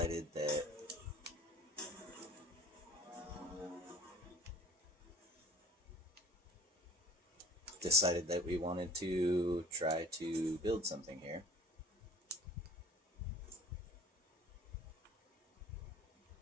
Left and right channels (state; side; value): normal; both; correlation 0.44